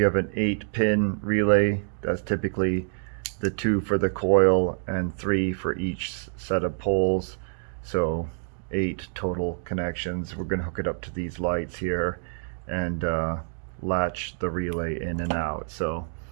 have an 8-pin relay, that's typically the 2 for the coil and 3 for each set of poles. So 8 total connections. We're going to hook it up to these lights here and latch the relay in and out. So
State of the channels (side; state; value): left; silent; digital silence